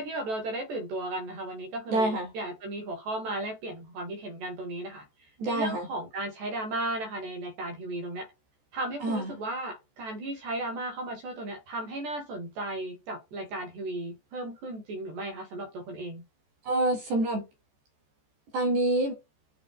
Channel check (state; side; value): late; left; 14 ms